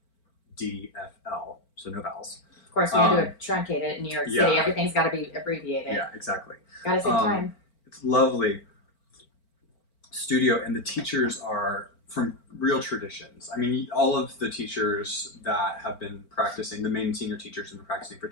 so no vowels. Of course, we had to truncate it in New York City. Everything's got to be abbreviated. Yeah, exactly. Gotta save time. It's lovely studio, and the teachers are from real traditions. I mean, all of the teachers that have been practicing, the main senior teachers have been practicing for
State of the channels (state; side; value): late; right; 4.4 ms